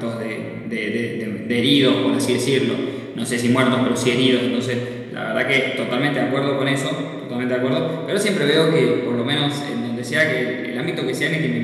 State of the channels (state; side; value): identical; both; correlation 1.00